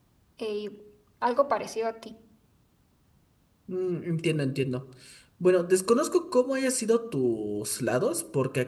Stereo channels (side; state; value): both; identical; correlation 1.00